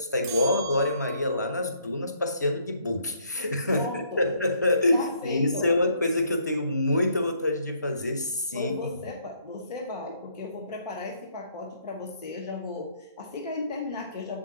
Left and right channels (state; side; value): inverted; both; correlation -0.68